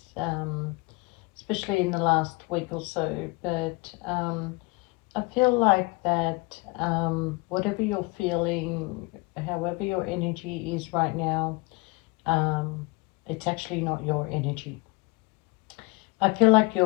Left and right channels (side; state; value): right; quieter; 24.7 dB